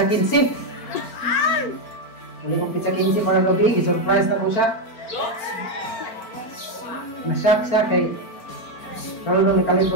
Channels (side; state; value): right; late; 4.4 ms